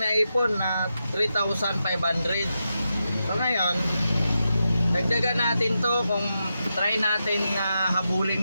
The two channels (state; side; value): inverted; both; correlation -0.88